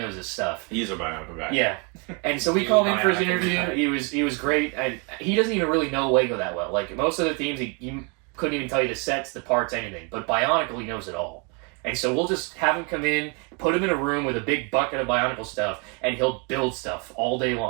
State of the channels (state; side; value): quieter; left; 33.8 dB